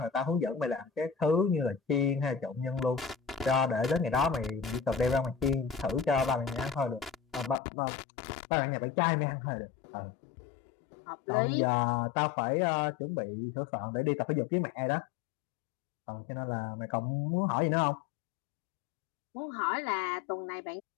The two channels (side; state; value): right; drops out; at 7.6 s